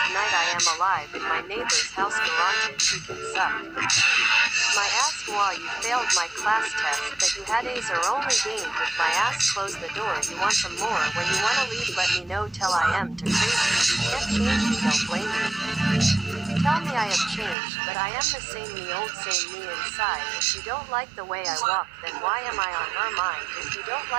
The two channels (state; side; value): drops out; left; at 17.6 s